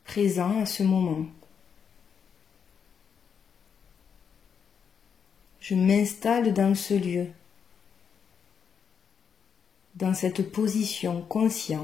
Présent à ce moment. Je m'installe dans ce lieu, dans cette position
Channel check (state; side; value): quieter; right; 7.0 dB